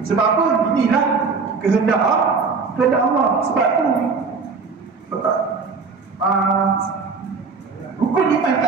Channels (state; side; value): quieter; left; 4.8 dB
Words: Sebab apa? Inilah kehendak Allah. Sebab tu rukun iman